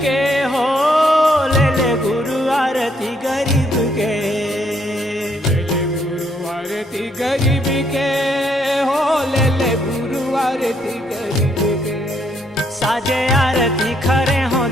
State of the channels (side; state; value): both; normal; correlation 0.71